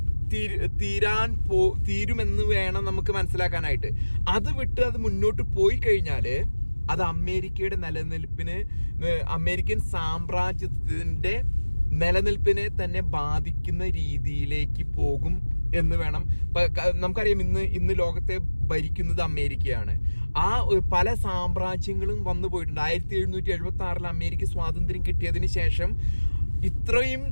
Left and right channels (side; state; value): both; inverted; correlation -1.00